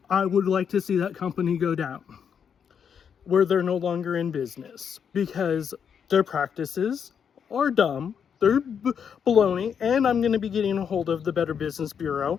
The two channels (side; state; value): right; quieter; 7.4 dB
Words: I would like to see that company go down where they're no longer in business because their practices are dumb. They're baloney, and I'm going to be getting a hold of the Better Business